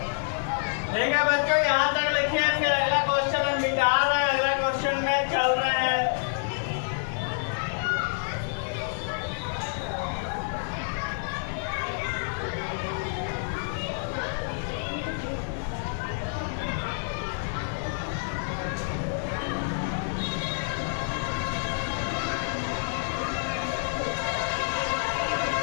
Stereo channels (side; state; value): right; silent; digital silence